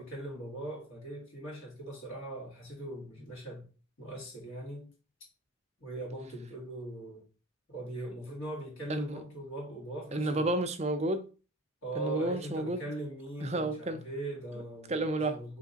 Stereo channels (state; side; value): normal; both; correlation 0.38